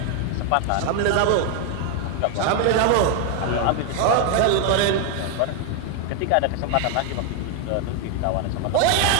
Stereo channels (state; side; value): different; both; correlation 0.01